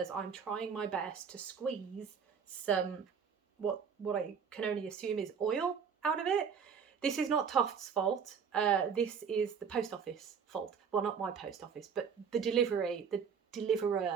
I'm trying my best to squeeze some, what I can only assume is oil out of it. This is not Toft's fault. This is the post office fault. Well, not my post office, but the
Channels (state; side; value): quieter; left; 6.6 dB